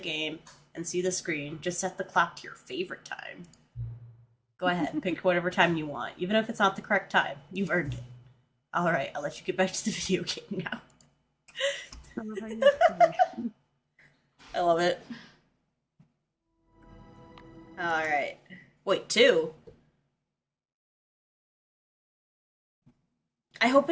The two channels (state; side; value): identical; both; correlation 1.00